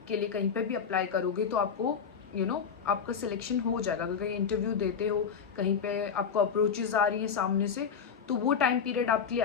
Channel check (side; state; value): right; quieter; 6.7 dB